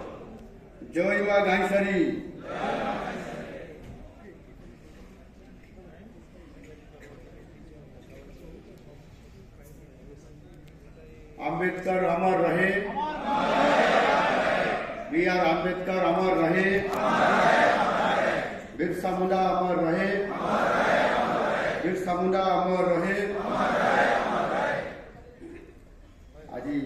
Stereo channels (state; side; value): identical; both; correlation 1.00